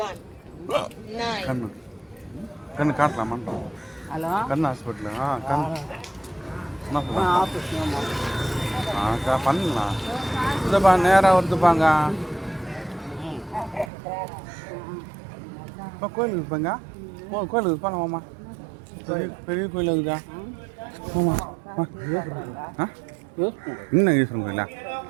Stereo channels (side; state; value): left; drops out; at 13.9 s